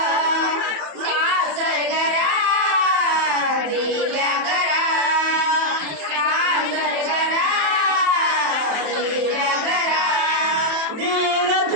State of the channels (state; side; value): late; left; 28 ms